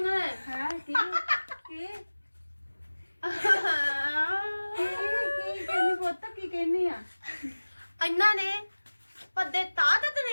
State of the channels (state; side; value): inverted; both; correlation -1.00